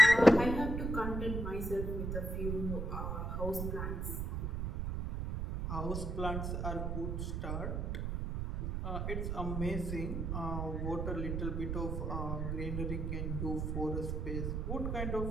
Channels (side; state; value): right; noise; rumble, 2 dB below the sound